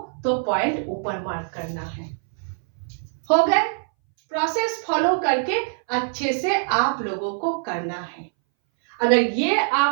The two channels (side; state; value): left; silent; 61 dB below the other